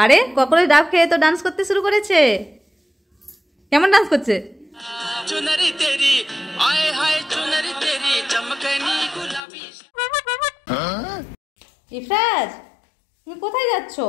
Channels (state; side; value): drops out; right; at 9.4 s